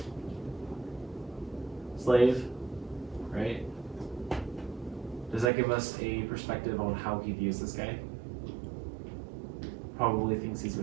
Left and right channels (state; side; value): drops out; left; at 5.5 s